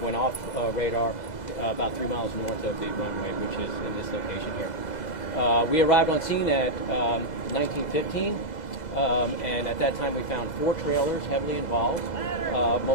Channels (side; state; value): right; late; 2.0 ms